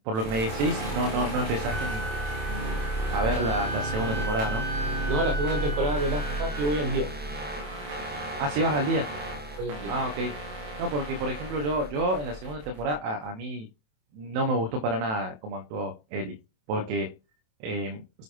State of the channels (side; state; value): left; late; 27 ms